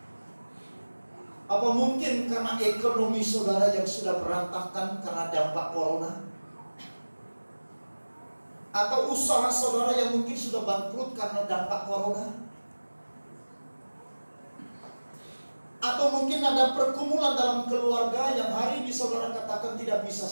Apa mungkin karena ekonomi saudara yang sudah berantakan karena dampak corona? Atau usaha saudara yang mungkin sudah bangkrut karena dampak corona? Atau mungkin ada pergumulan dalam keluarga yang hari ini saudara katakan tidak bisa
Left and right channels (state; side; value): inverted; both; correlation -1.00